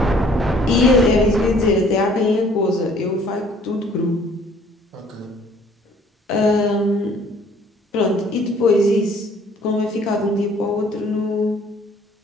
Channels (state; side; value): normal; both; correlation 0.57